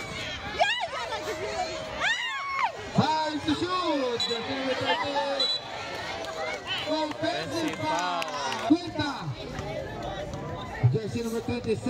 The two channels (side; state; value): both; identical; correlation 1.00